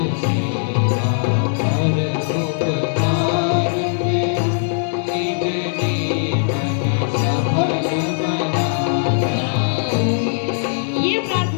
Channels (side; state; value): right; silent; digital silence